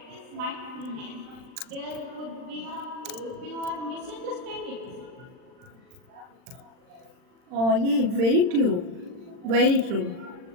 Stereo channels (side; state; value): left; late; 39 ms